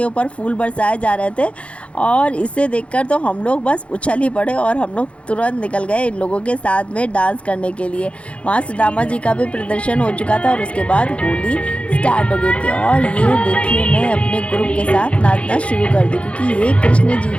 ऊपर फूल बरसाए जा रहे थे और इसे देखकर तो हम लोग बस उछल ही पड़े और हम लोग तुरंत निकल गए इन लोगों के साथ में डांस करने के लिए। वहाँ सुदामा जी का भी प्रदर्शन हो चुका था और उसके बाद होली स्टार्ट हो गई थी। और ये देखिए मैं अपने ग्रुप के साथ नाचना शुरू कर दी, क्योंकि ये कृष्ण जी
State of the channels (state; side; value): late; right; 0.061 ms